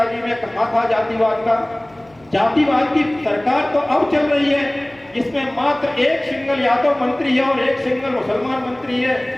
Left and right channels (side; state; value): left; noise; hum, 29 dB below the sound